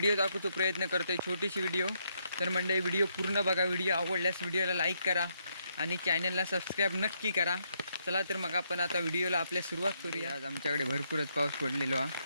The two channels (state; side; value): inverted; both; correlation -0.76